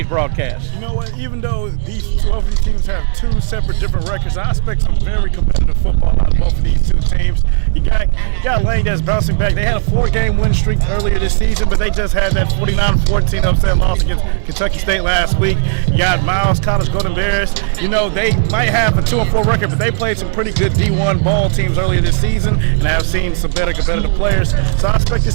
broadcast? You know what? Even though these 12 of these teams have two separate different records, I expect some very competitive football out of both of these two teams. You got Lane that's bouncing back. They had a 4-game win streak earlier this season, but they just had that 49-14 upset loss against Kentucky State last week. You got Miles College Golden Bears. You know, they might have a 2-4 record, but they played some pretty good D1 ball teams earlier this season, and I've seen some better competitive players. So I expect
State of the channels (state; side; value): silent; left; digital silence